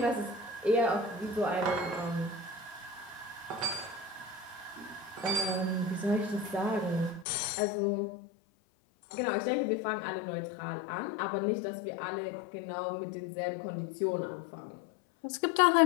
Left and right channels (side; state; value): right; drops out; at 7.2 s